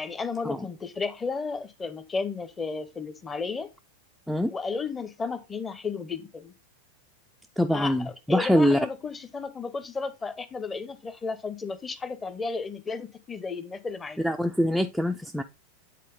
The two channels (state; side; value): normal; both; correlation 0.88